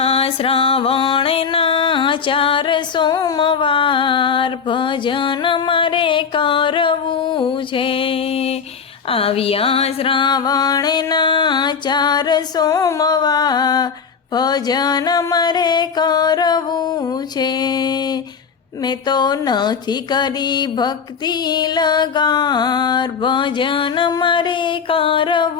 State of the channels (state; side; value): quieter; right; 6.2 dB